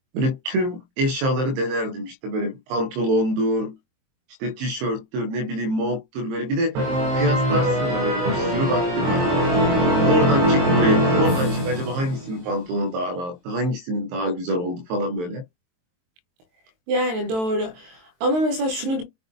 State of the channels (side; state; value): left; late; 23 ms